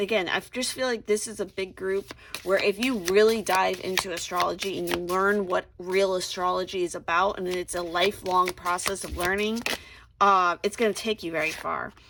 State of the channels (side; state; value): both; identical; correlation 1.00